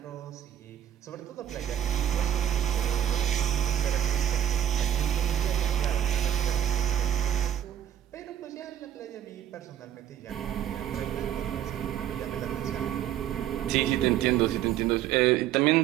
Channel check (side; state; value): left; quieter; 10.9 dB